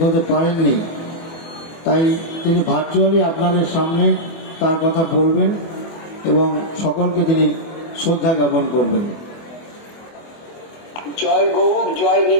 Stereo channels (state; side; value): late; right; 24 ms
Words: হতে পারেননি, তাই তিনি ভার্চুয়ালি আপনাদের সামনে তার কথা বলবেন এবং সকলকে তিনি শ্রদ্ধা জ্ঞাপন করবেন। জয় গৌর, জয়